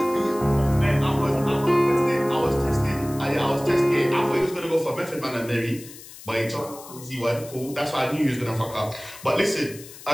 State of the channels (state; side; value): noise; left; hiss, 17 dB below the sound